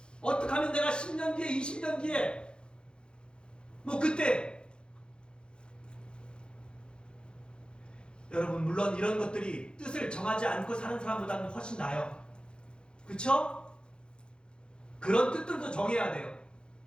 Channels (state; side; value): late; right; 0.051 ms